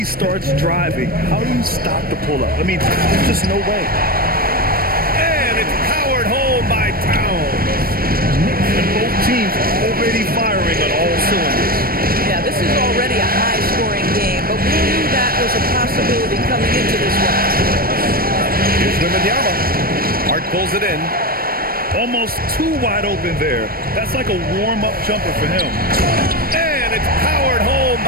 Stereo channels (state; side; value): late; left; 0.43 ms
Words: starts driving, how do you stop the pull-up? I mean, there's just no way. And it's powered home by Towns. And both teams already firing on all cylinders. Yeah, this is already a high-scoring game, but we knew that was a possibility. possibility coming into this one. Here's Wembanyama. Hart pulls it in. Almost too wide open there. That's like a warm-up jumper for him. And it's powered home